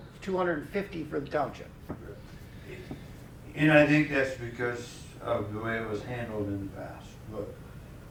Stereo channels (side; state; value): both; identical; correlation 1.00